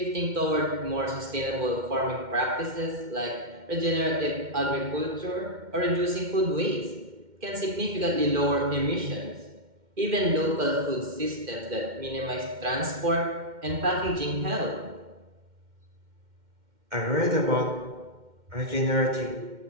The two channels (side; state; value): left; late; 2.1 ms